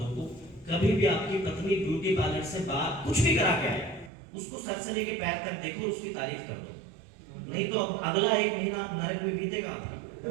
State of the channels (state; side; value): drops out; left; at 4.1 s